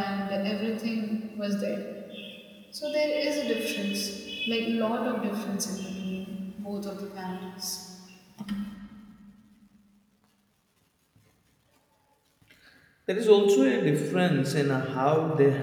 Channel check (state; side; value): identical; both; correlation 1.00